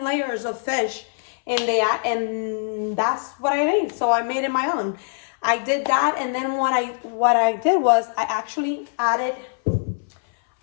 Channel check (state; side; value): silent; right; 59 dB below the other